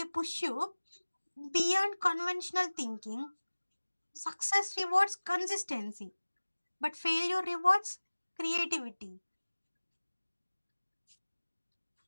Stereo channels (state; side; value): inverted; both; correlation -1.00